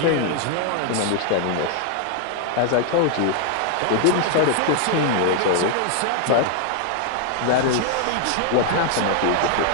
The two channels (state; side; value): different; both; correlation 0.00